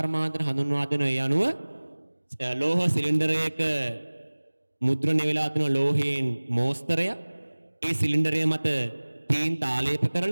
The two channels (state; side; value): inverted; both; correlation -1.00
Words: හඳුන්වා දෙන. ඒ අනුව ලෝහ සිලින්ඩරයක මුද්‍රණය වෙලා තියෙන ලෝහයෙන් මෝස්තරය ඒ සිලින්ඩරය මත තීන්ත ආලේප